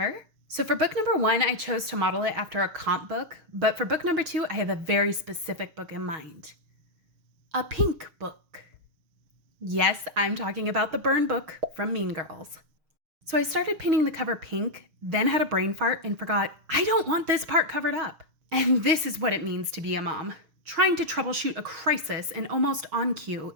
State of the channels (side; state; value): left; late; 6.3 ms